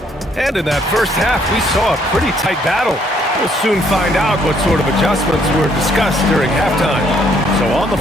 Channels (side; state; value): both; normal; correlation 0.67